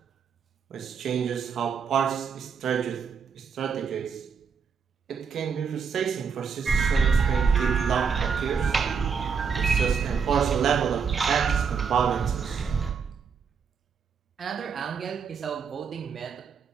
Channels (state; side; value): quieter; left; 6.2 dB